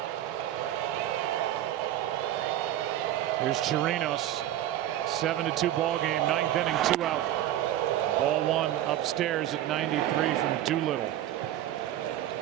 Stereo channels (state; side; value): quieter; left; 12.7 dB